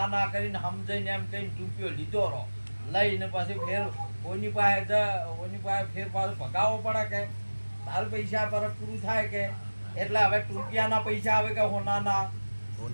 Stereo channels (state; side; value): inverted; both; correlation -1.00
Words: ના કરીને સમજાઈને એમ કહીને ટૂપિયો લીધો રહો લઈને પછી ફેર ઓની પાસે ફેર પાછું ભગાવવો પડે કે તારું પૈસા પર પૂરું થાય કે. એટલે હવે ટૂંપિયાના પૈસા આવે કે હોનાના?